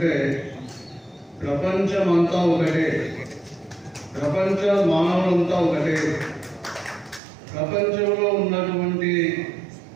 ప్రపంచం అంతా ఒకటే, ప్రపంచ మానవులంతా ఒకటే, ప్రపంచంలో ఉన్నటువంటి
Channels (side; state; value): left; drops out; at 7.2 s